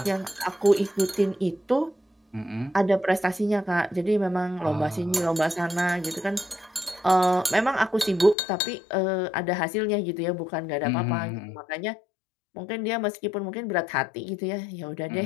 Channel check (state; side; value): drops out; right; at 8.3 s